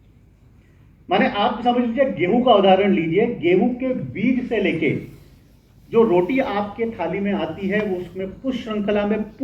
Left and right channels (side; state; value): both; identical; correlation 1.00